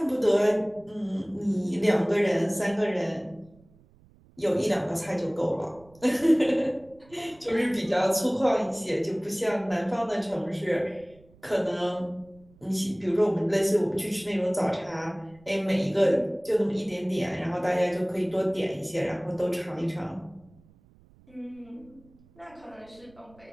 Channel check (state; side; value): noise; right; rumble, 28 dB below the sound